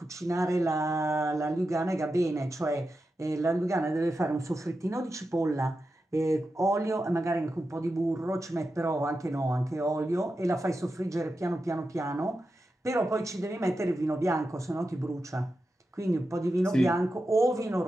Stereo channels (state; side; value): normal; both; correlation 0.90